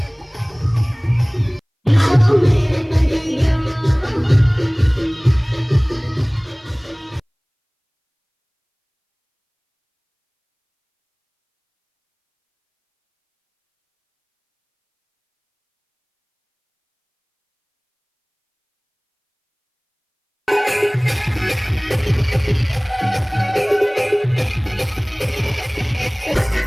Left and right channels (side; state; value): both; identical; correlation 1.00